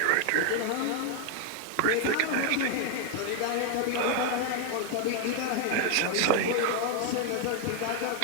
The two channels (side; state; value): both; different; correlation 0.00